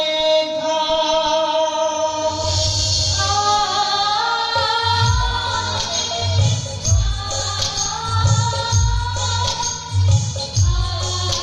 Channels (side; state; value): both; identical; correlation 1.00